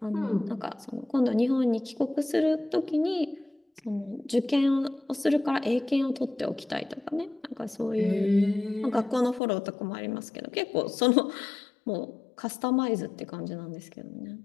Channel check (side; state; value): right; drops out; at 9.4 s